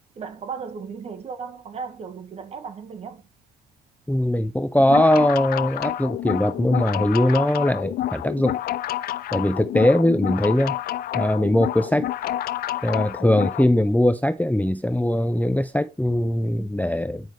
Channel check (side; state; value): both; normal; correlation 0.86